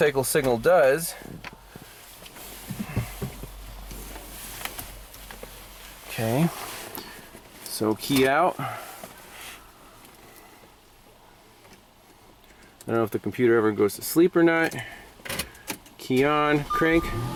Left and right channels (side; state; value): both; identical; correlation 1.00